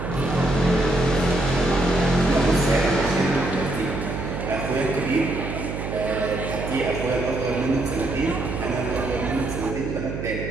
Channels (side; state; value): right; noise; hum, 6 dB below the sound